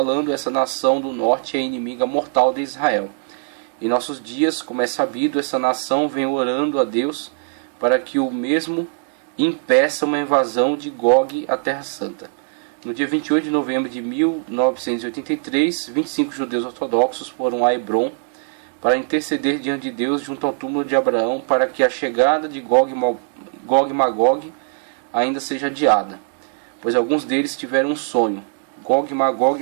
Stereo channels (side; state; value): left; silent; digital silence